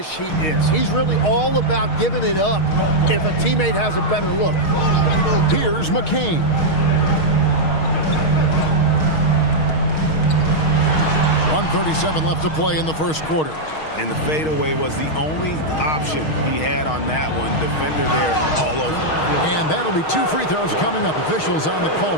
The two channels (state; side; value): late; right; 6.4 ms